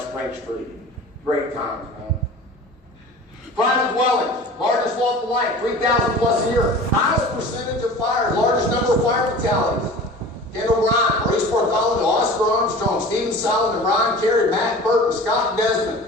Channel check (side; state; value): both; normal; correlation 0.40